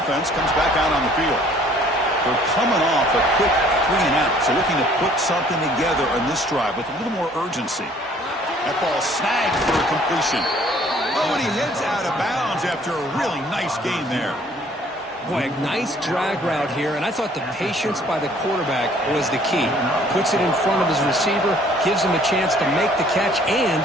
offense comes back out on the field. They're coming off a quick 3-and-out, so looking to put something together on this drive with a little more urgency. That ball snagged for a completion. Oh, and he heads out of bounds after a really nice gain there. Boy, a nice drag route here, and I thought the patience by the quarterback was the key. Puts it in front of his receiver, gives him a chance to make the catch, and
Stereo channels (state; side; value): normal; both; correlation 0.57